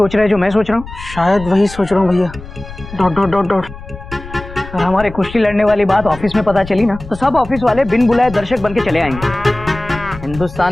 रहा है जो मैं सोच रहा हूँ? शायद वही सोच रहा हूँ भैया। Dot dot dot dot. अगर हमारे कुश्ती लड़ने वाली बात ऑफिस में पता चली ना तो सब ऑफिस वाले बिन बुलाए दर्शक बन के चले आएंगे। हिंदुस्तान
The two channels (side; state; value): left; noise; rumble, 14 dB below the sound